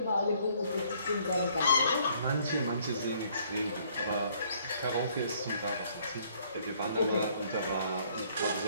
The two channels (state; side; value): inverted; both; correlation -0.63